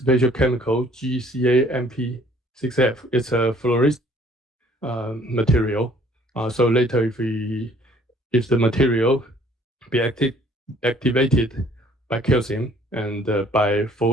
chemical GCAMP6F. It's a fluorescent material. So later, if the material be activated by calcium and by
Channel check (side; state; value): both; normal; correlation 0.58